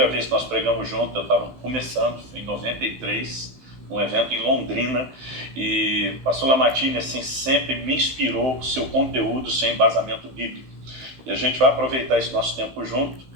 vez que nós pregamos juntos, eu estava começando, foi em 93, num evento em Londrina, e o pastor Lamartine, assim, sempre me inspirou com o seu conteúdo, seu embasamento bíblico. E a gente vai aproveitar esse nosso tempo junto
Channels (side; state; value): left; late; 15 ms